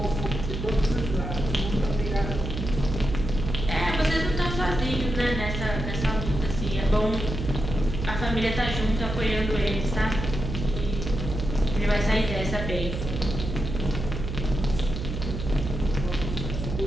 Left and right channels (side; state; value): right; noise; hum, 5 dB below the sound